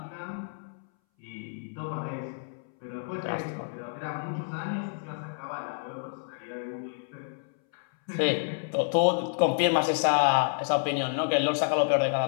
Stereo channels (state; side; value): silent; right; 58 dB below the other